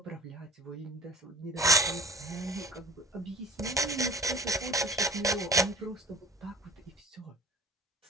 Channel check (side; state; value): both; normal; correlation 0.48